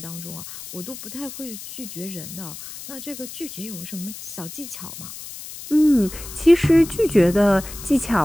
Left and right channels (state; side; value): noise; left; hiss, 12 dB below the sound